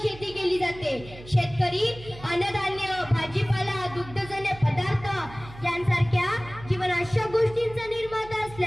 शेती केली जाते। शेतकरी अन्नधान्य, भाजीपाला, दुग्धजन्य पदार्थ यांसारख्या जीवनावश्यक गोष्टींचा निर्माता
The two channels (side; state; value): right; noise; hum, 17 dB below the sound